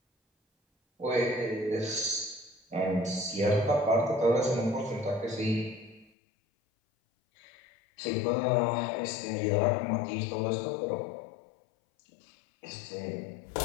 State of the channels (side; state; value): right; drops out; at 6.1 s